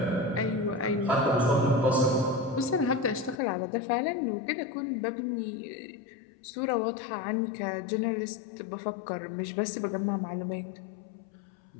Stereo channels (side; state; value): right; drops out; at 3.4 s